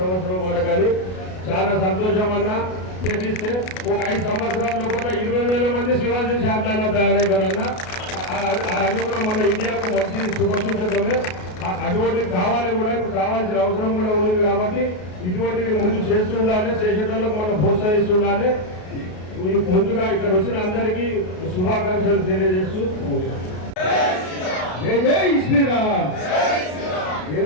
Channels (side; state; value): right; late; 33 ms